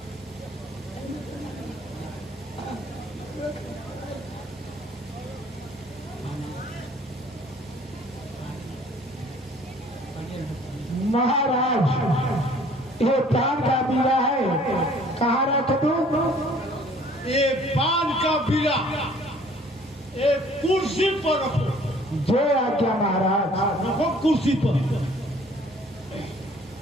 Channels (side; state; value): both; normal; correlation 0.55